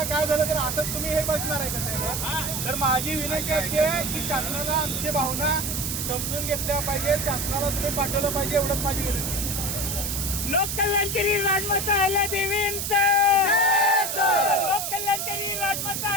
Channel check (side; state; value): right; noise; hiss, 2 dB below the sound